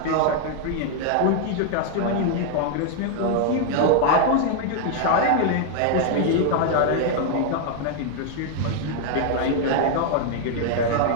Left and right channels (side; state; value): both; different; correlation 0.00